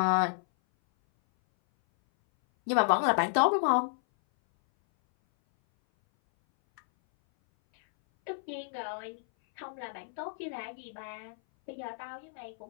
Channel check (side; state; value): right; silent; 57 dB below the other